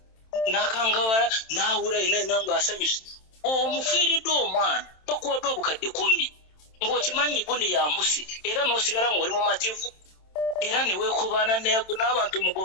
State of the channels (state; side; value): late; right; 27 ms